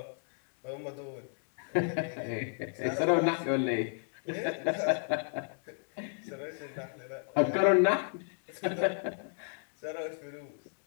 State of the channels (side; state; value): right; silent; 56 dB below the other